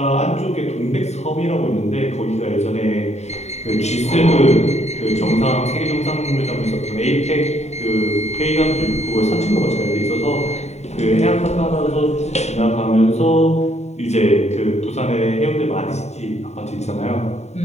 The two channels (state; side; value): late; right; 0.32 ms